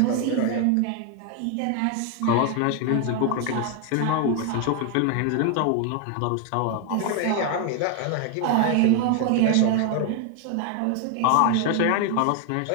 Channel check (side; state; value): both; different; correlation 0.00